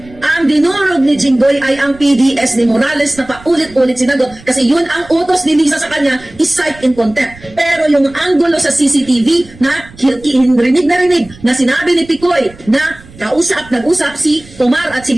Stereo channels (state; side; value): noise; right; rumble, 22 dB below the sound